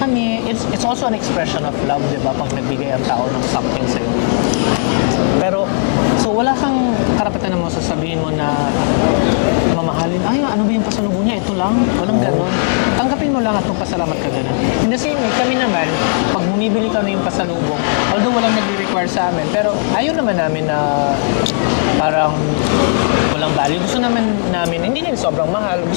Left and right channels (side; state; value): right; silent; digital silence